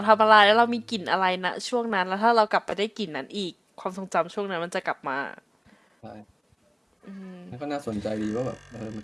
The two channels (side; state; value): both; identical; correlation 1.00